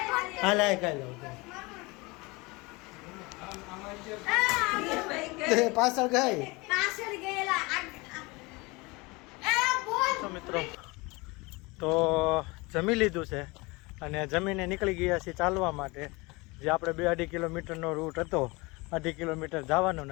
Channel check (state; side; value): quieter; right; 25.0 dB